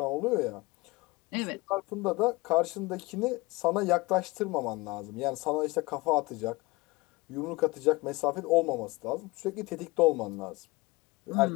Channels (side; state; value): right; quieter; 23.1 dB